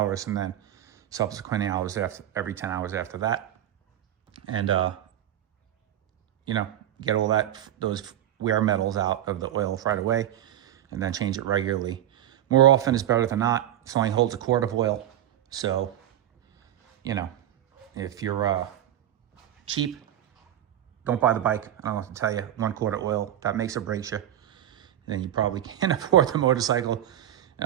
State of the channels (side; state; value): left; quieter; 11.7 dB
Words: and then subsequent hours every 10 hours after that. And, you know, get all those wear metals out of the oil right away, and then change it regularly. More often is better than not. It only holds a quart of oil. So, you know, if you're cheap, don't buy the bike. I don't have to tell you, 1 quart of oil, that makes or breaks you. Then you probably can't afford the motorcycle.